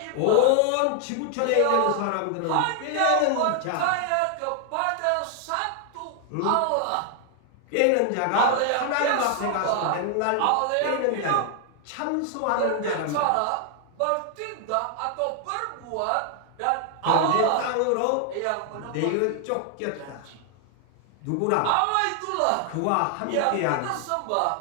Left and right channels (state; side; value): different; both; correlation 0.00